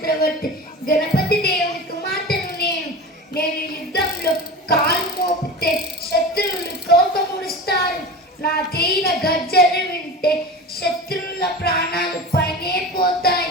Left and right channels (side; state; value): both; normal; correlation 0.31